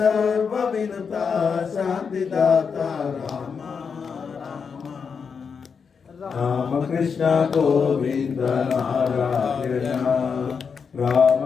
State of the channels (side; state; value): right; quieter; 6.0 dB